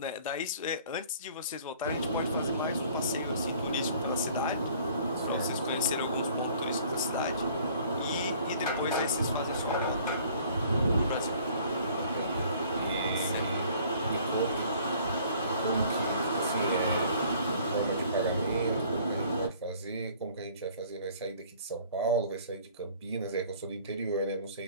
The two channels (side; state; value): both; inverted; correlation -0.54